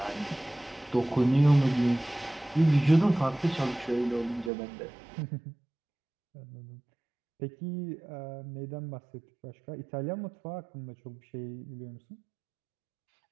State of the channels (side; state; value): left; drops out; at 4.5 s